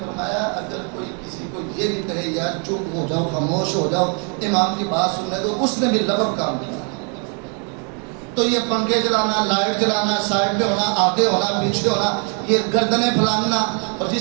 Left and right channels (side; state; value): left; quieter; 38.4 dB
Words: اگر کوئی کسی کو یہ بھی کہے یار چپ ہو جاؤ، خاموش ہو جاؤ، امام کی بات سننے دو، اس نے بھی لغو کام کیا۔ تو یہ پنکھے چلانا، لائٹ چلانا، سائڈ پہ ہونا، آگے ہونا، پیچھے ہونا، یہ گردنیں پھلانگنا. اور